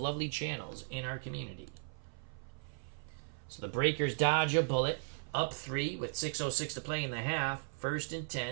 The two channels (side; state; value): left; silent; 53 dB below the other